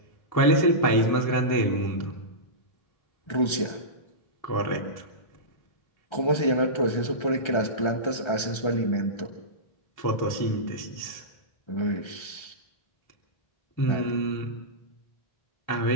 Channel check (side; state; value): right; late; 1.3 ms